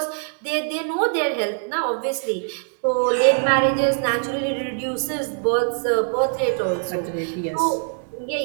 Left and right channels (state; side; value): silent; left; 64 dB below the other